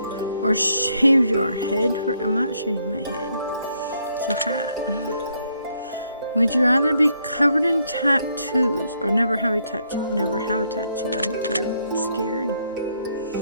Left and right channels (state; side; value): inverted; both; correlation -0.73